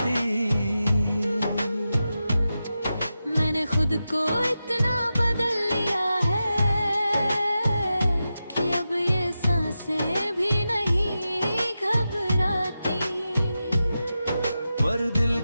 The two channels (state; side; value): inverted; both; correlation -0.91